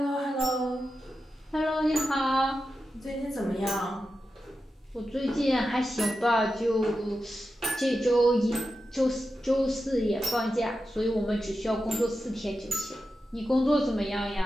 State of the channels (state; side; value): normal; both; correlation 0.90